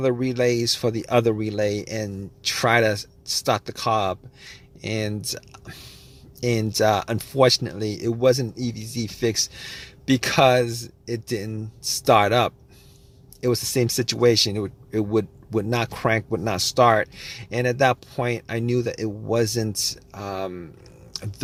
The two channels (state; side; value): identical; both; correlation 1.00